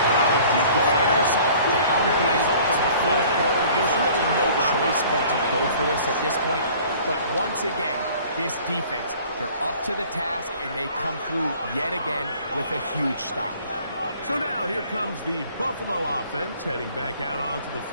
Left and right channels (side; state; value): both; inverted; correlation -0.51